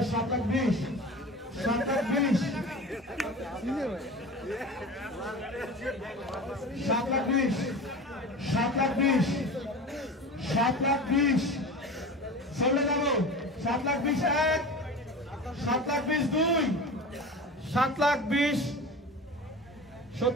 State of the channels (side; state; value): both; normal; correlation 0.33